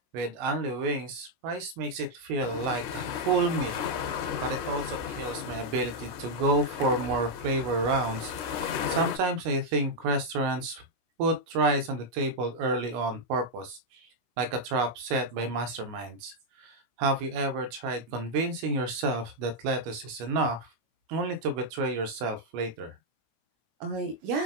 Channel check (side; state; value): left; late; 17 ms